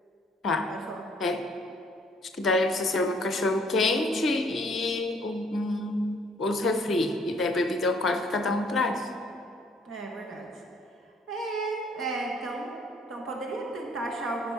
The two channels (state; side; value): normal; both; correlation 0.62